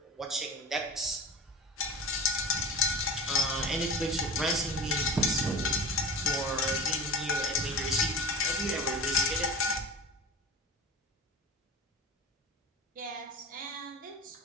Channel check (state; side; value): normal; both; correlation 0.32